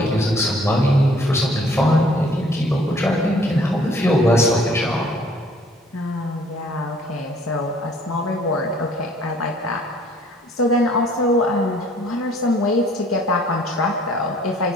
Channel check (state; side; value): normal; both; correlation 0.58